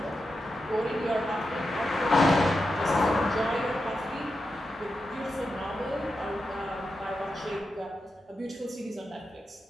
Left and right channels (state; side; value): normal; both; correlation 0.88